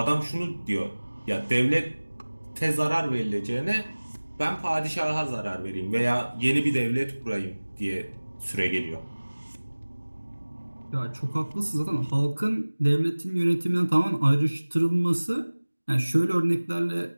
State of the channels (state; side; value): inverted; both; correlation -1.00